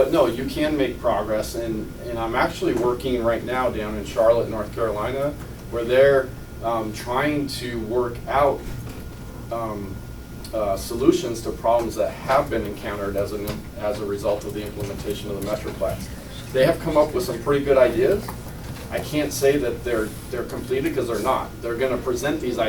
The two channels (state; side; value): identical; both; correlation 1.00